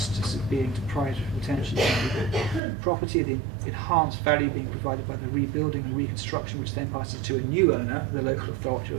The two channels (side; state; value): left; drops out; at 2.6 s